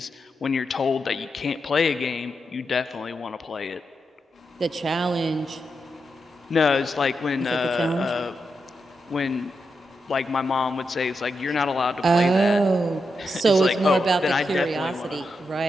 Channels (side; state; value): both; normal; correlation 0.85